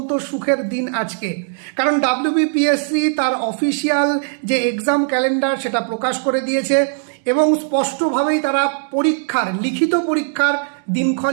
সুখের দিন আজকে। কারণ ডাব্লিউবিপিএসসি তার অফিসিয়াল যে এক্সাম ক্যালেন্ডার সেটা প্রকাশ করে দিয়েছে এবং স্পষ্টভাবেই তারা লিখিত পরীক্ষার দিনক্ষণ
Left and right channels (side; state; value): left; silent; 67 dB below the other